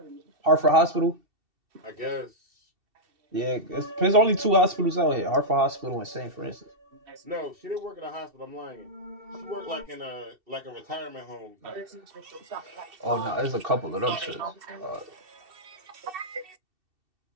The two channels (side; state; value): left; late; 2.7 ms